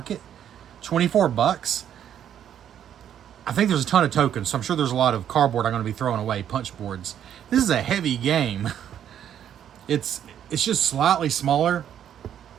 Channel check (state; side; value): quieter; left; 9.8 dB